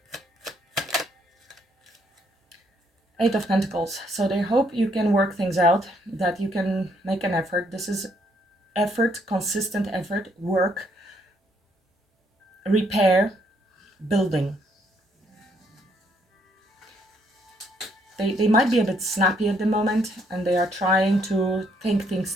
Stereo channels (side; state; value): both; normal; correlation 0.70